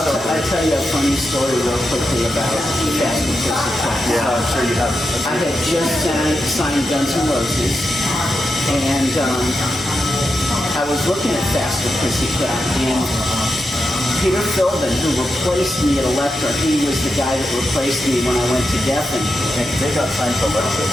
I'll tell you a funny story real quickly about Faster Pussycat. Yeah, I'm sure you have. I had just signed Guns N' Roses, and I was looking at Faster Pussycat, and Peter Philbin, who replaced me at Elektra, he was the guy that replaced me when I went to Geffen. They got signed to Alexa,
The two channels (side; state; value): both; normal; correlation 0.87